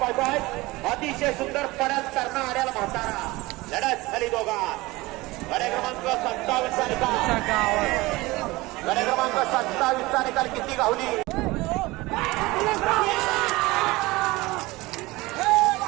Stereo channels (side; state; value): left; quieter; 21.0 dB